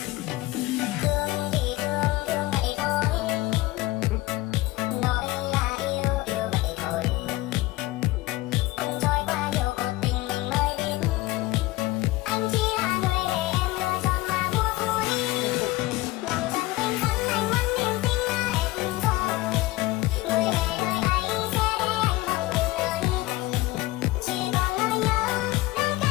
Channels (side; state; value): right; quieter; 18.6 dB